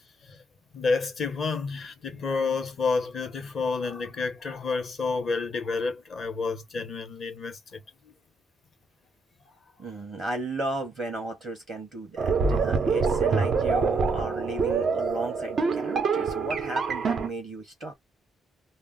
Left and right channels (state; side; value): normal; both; correlation 0.74